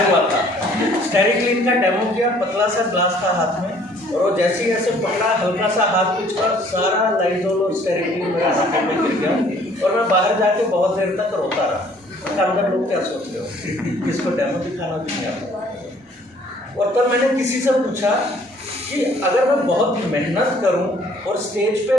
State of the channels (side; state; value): both; normal; correlation 0.58